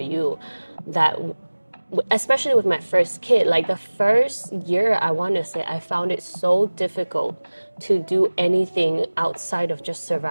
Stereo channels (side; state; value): both; inverted; correlation -1.00